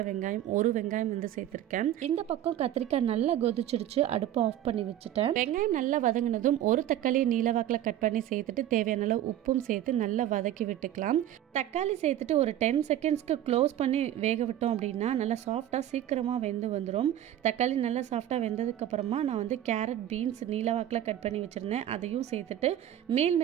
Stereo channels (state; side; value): quieter; left; 12.0 dB